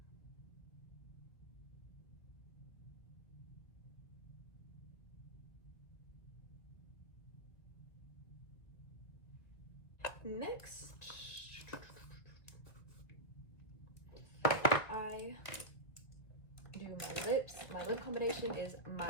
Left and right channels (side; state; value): right; late; 2.0 ms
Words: Next, I do my lips. My lip combination is